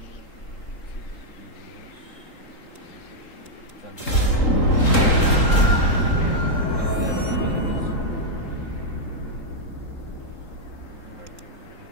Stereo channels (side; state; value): right; late; 3.8 ms